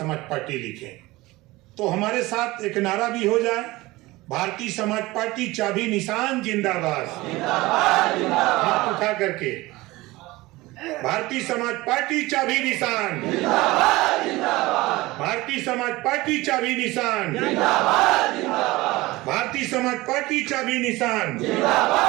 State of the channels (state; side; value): quieter; left; 20.1 dB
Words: पार्टी लिखें। तो हमारे साथ एक नारा भी हो जाए, भारतीय समाज पार्टी चाबी निशान जिंदाबाद। हाथ उठा करके भारतीय समाज पार्टी चाबी निशान, भारतीय समाज पार्टी चाबी निशान, भारतीय समाज पार्टी चाबी निशान।